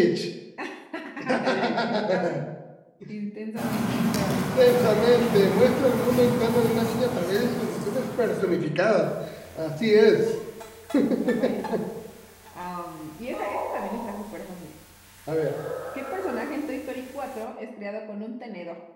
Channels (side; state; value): both; identical; correlation 1.00